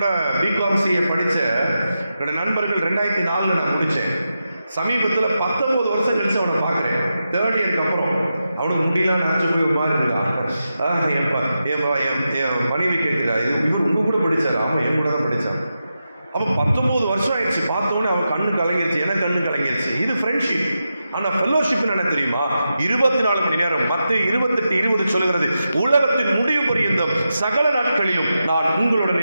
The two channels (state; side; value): inverted; both; correlation -0.89